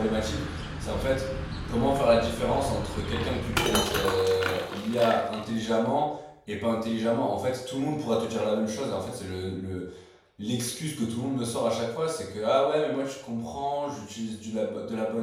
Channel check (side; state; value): both; identical; correlation 1.00